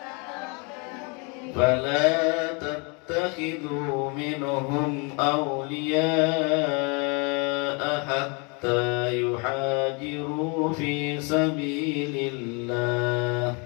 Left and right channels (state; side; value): quieter; right; 32.5 dB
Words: فلا تتخذوا منهم أولياء حتى يحاجروا في سبيل الله.